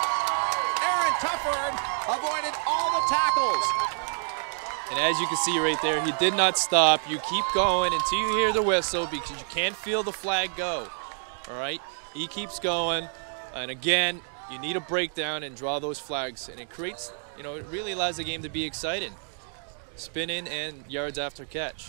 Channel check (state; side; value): silent; left; digital silence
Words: Aaron Tufford avoided all the tackles. And as you can see right there, he did not stop. You keep going until you hear the whistle because you can't feel the flag go. All right? He keeps going. And again, you need a breakdown and draw those flags. And it creates, it really allows the game to be exciting. Spin-in and yards after